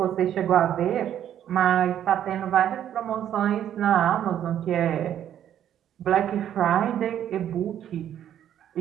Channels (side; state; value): left; quieter; 10.4 dB